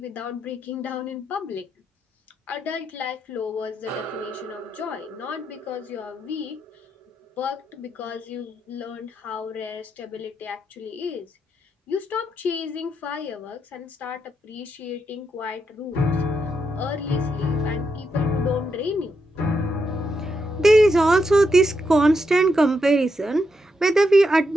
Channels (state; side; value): normal; both; correlation 0.82